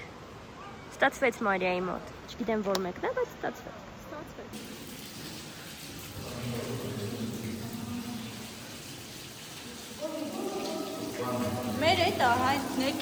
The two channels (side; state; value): both; identical; correlation 1.00